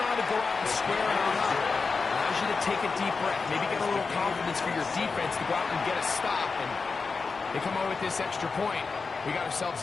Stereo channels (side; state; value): right; quieter; 4.6 dB